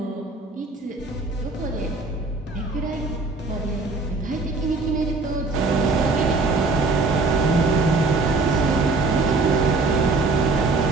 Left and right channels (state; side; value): quieter; left; 3.6 dB